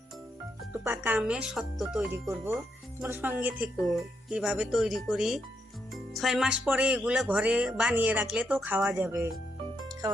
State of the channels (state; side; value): normal; both; correlation 0.79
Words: একটু পাকা আমের সত্ত্ব তৈরি করব। তোমার সঙ্গে থেকো কিভাবে তৈরি করি। 6 মাস পরে এগুলো ঘরে বানিয়ে রাখলে তো খাওয়া যাবে,